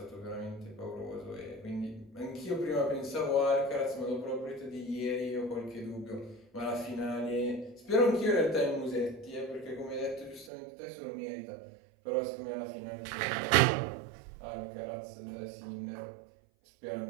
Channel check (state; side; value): drops out; left; at 10.5 s